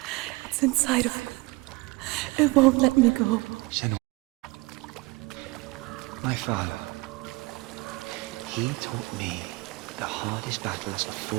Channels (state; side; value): quieter; left; 23.6 dB